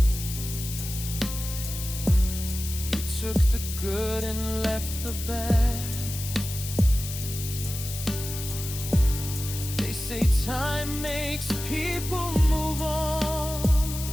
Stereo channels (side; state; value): left; noise; hiss, 8 dB below the sound